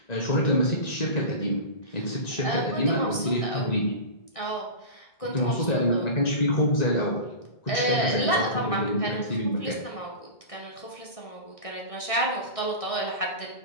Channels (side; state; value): right; late; 1.6 ms